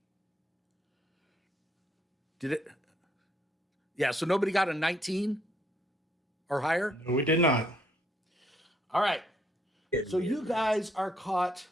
Did it? Yeah, so nobody got a 19 or higher? No, we did not. All right. So you guys are caught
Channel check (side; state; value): both; normal; correlation 0.70